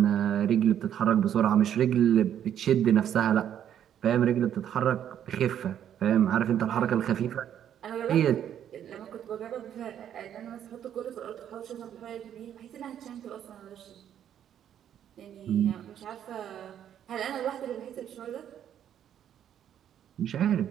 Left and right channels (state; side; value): quieter; left; 9.9 dB